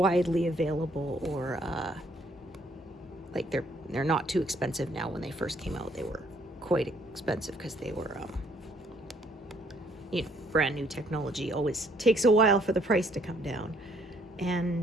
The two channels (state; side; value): normal; both; correlation 0.66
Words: available, or like they're not too expensive now. When they first came out, they were quite expensive because they were you know, brand new technology. Always takes a while for the price to come down.